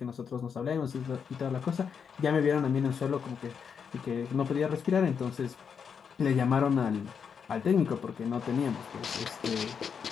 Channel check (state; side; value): quieter; right; 6.7 dB